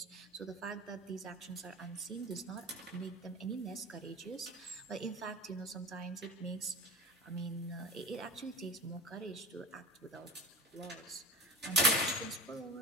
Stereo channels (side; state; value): both; normal; correlation 0.30